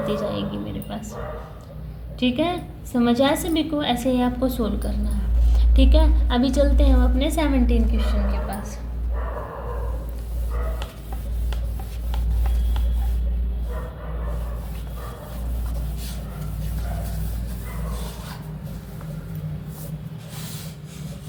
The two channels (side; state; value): both; identical; correlation 1.00